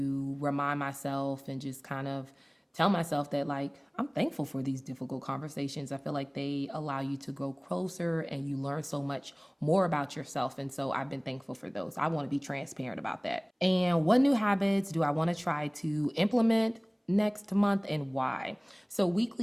remind myself and just kind of tell myself that like I'm thankful for these difficult conversations. I feel like they allow you to grow closer and you learn so much more about yourself. And so I've been thankful for those. I want to be transparent about that. And what new habits do I want to try to implement next month and why? So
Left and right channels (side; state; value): both; identical; correlation 1.00